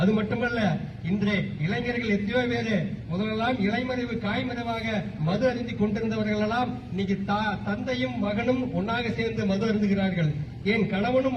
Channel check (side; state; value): both; identical; correlation 1.00